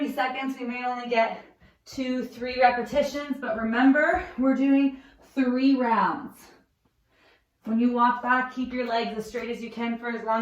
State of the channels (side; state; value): both; identical; correlation 1.00